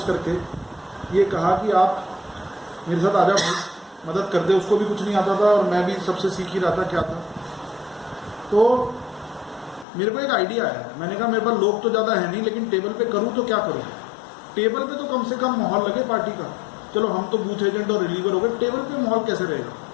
करके ये कहा कि आप मेरे साथ आ जाओ, मदद कर दे। उसको भी कुछ नहीं आता था और मैं भी सबसे सीख ही रहा था क्या था। तो मेरे को एक आइडिया आया, मैंने कहा मेरे पास लोग तो ज़्यादा है नहीं, लेकिन टेबल पे करूँ तो क्या करूँ। टेबल पे तो कम से कम माहौल लगे पार्टी का। चलो हम तो बूथ एजेंट और रिलीवर हो गए, टेबल पे माहौल कैसे रहेगा।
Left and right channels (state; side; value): drops out; right; at 9.9 s